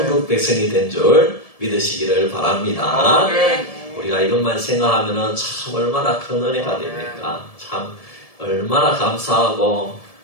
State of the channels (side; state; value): right; late; 1.7 ms